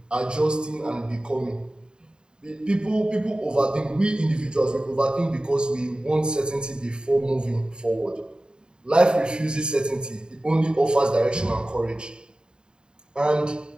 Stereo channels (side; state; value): left; late; 0.049 ms